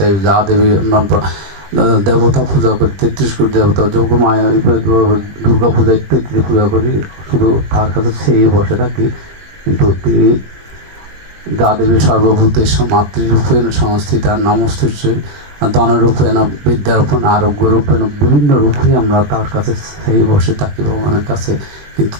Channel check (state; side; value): late; left; 20 ms